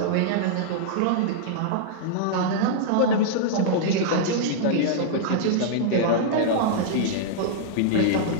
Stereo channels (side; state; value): both; different; correlation -0.02